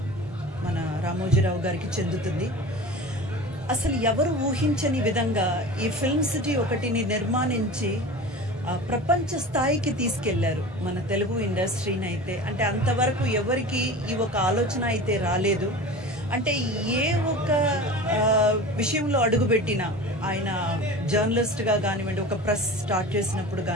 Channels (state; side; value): normal; both; correlation 0.34